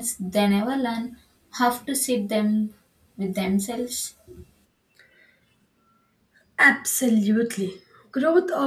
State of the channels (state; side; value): identical; both; correlation 1.00